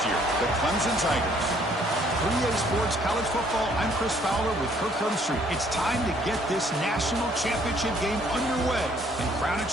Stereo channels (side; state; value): both; normal; correlation 0.63